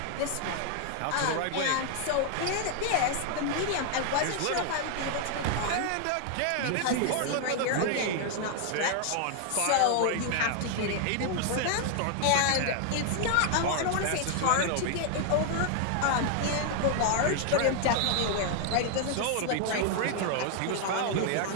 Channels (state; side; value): different; both; correlation 0.00